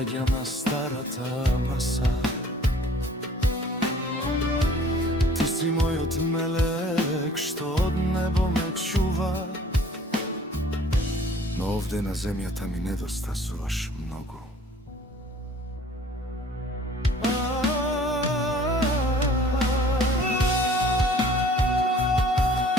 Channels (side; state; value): both; normal; correlation 0.52